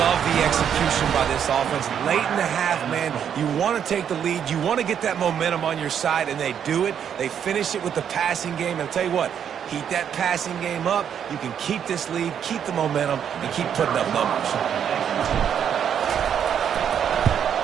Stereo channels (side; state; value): left; quieter; 8.5 dB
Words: the execution by this offense. Late in the half, man, you want to take the lead. You want to get that momentum on your side, and they do it. They finish it with the passing game. And I'll tell you what, keep that passing game up. You can keep this lead, keep the momentum, and keep putting up numbers.